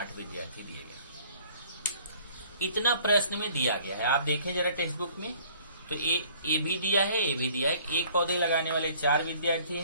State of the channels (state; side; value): inverted; both; correlation -0.56